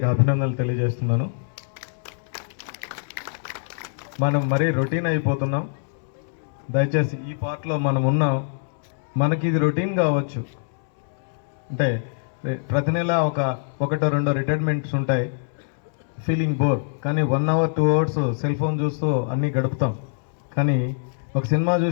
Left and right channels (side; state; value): right; silent; 63 dB below the other